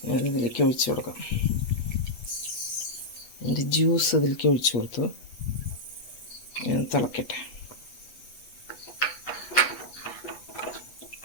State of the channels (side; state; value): right; late; 8.1 ms